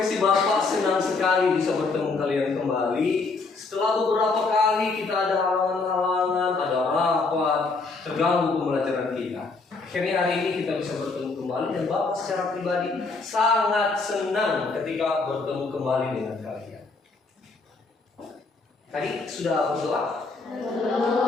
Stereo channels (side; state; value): right; quieter; 3.9 dB